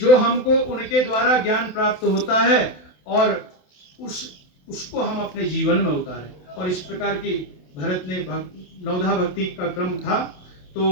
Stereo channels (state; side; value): late; right; 27 ms